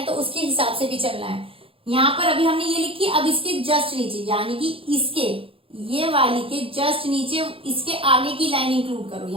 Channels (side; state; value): left; late; 0.27 ms